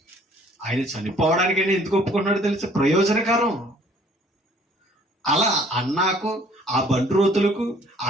ఆయన చనిపోవడానికైనా ఎందుకు ఒప్పుకున్నాడో తెలిసి ప్రయోజనకరం. అలా అన్నాకు, ఆ బంట్రోతులకు,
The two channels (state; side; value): normal; both; correlation 0.57